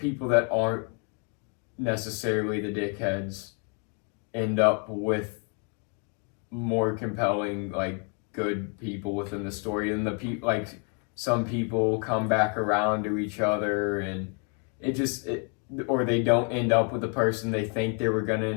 that aren't necessarily the dickheads end up with more compelling, like, good people within the story, and the people, like, some people come back around to each other, and or they don't end up with the person they think they were gonna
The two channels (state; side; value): quieter; right; 39.7 dB